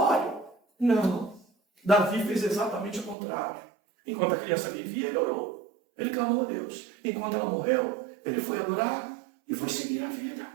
Não. Davi fez exatamente o contrário. Enquanto a criança vivia, ele orou. Ele clamou a Deus. Enquanto ela morreu, ele foi adorar e foi seguir a vida.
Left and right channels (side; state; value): left; drops out; at 3.2 s